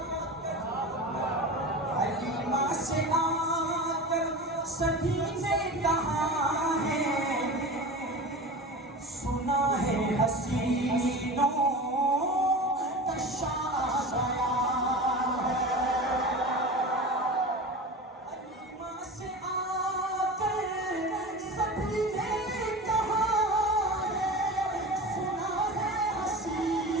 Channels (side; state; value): both; normal; correlation 0.31